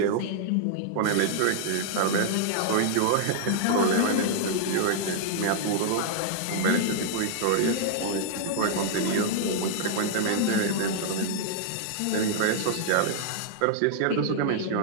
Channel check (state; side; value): different; both; correlation -0.01